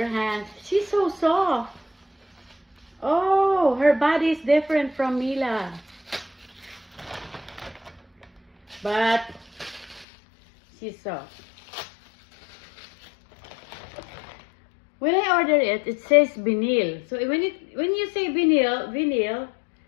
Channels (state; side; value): drops out; right; at 10.1 s